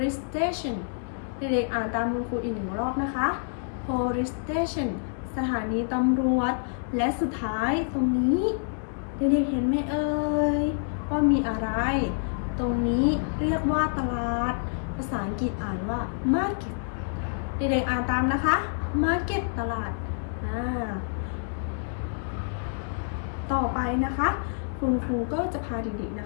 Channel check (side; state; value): right; silent; digital silence